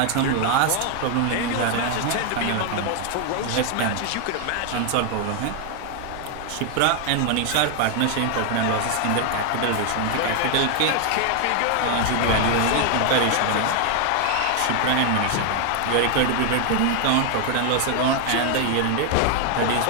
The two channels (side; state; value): both; different; correlation 0.00